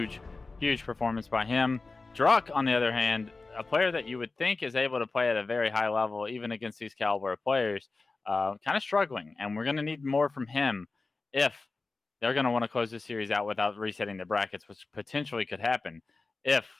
performance by him. Druck, on the other hand, a player that you would think is able to play at a very high level, even against these caliber of players, kind of struggling. And we're going to need more from him if they're going to want to close this series out without resetting the brackets, which potentially could happen if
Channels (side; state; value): right; quieter; 3.7 dB